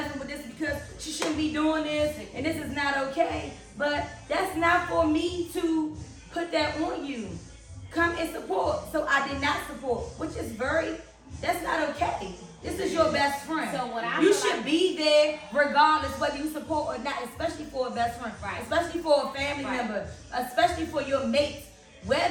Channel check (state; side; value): identical; both; correlation 1.00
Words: with this because she shouldn't be doing this and this is not okay. But that's not for me to put that on you. Come and support. So I did not support, which is that's not okay. This is your best friend. So what you should be there regardless whether you support or not, especially for a best friend, right, especially for a family member, especially for your mates.